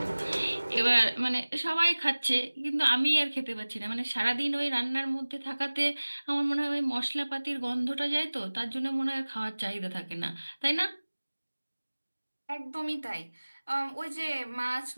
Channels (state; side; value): inverted; both; correlation -1.00